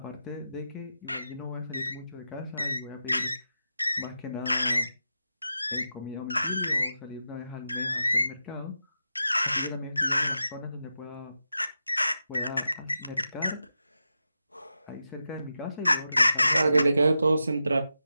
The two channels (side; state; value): both; inverted; correlation -0.89